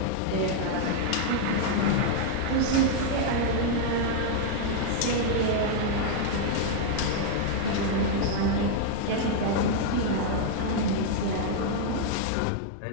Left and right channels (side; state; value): both; different; correlation -0.01